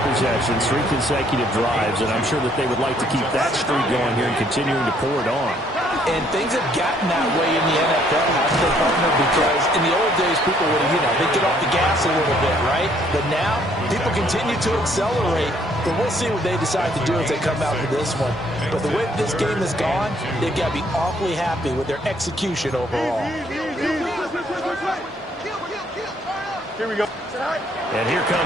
possessions, 3 consecutive drives, and I'm sure that they would like to keep that streak going here and continuing to pour it on. And things have gotten that way in the NFL, haven't they, partner? Because in the old days, people would have, they'd get off the gas a little bit, right? But now, people continue to accelerate. But we'll see what they decide to do as they come out to this one. But the way this game has gone, they've got to be awfully happy with their execution overall. Here we go. And here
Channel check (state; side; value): normal; both; correlation 0.65